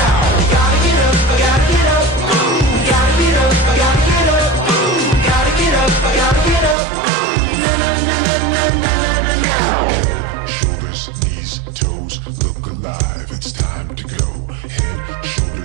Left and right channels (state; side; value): drops out; left; at 6.8 s